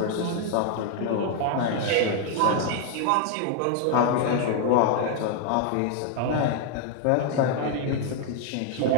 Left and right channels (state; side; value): different; both; correlation 0.00